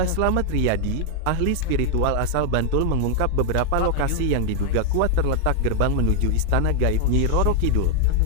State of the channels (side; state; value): both; different; correlation 0.00